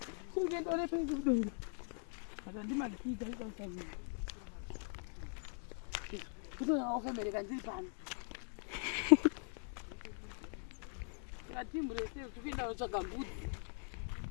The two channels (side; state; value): right; silent; 50 dB below the other